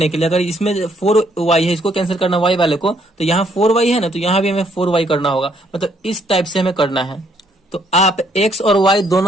के लिए। अगर इसमें 4y है, इसको कैंसिल करना y वाले को, तो यहाँ 4y है ना, तो यहाँ भी हमें 4y करना होगा। मतलब इस टाइप से हमें करना है। तो आप x और y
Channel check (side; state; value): both; normal; correlation 0.69